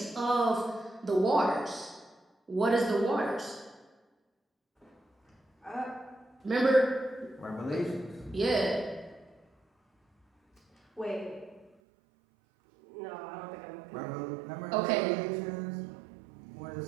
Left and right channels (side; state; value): left; drops out; at 11.7 s